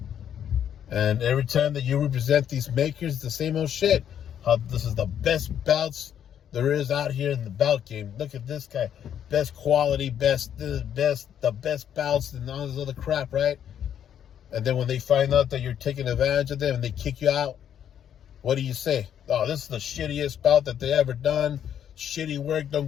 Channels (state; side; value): quieter; right; 9.4 dB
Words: And every time that you represent these makers, the same old shit. How this is the best bouts there is out here in the bout game. Look at this guy. Best quality, the best bouts and all this other crap, right? And then when they find out that you're taking advantage of them and they kick you out, what do you say? Oh, this is the shittiest bout that they ever done. Shitty work. Don't